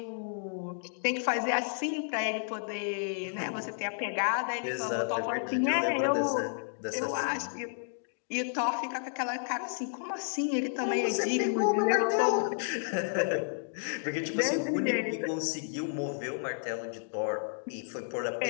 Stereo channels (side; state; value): right; silent; digital silence